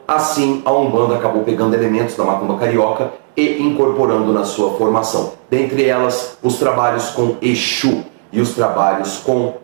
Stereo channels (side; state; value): left; silent; 62 dB below the other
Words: assim, a Umbanda acabou pegando elementos da macumba carioca e incorporando na sua formação. Dentre elas, os trabalhos com Exu e os trabalhos com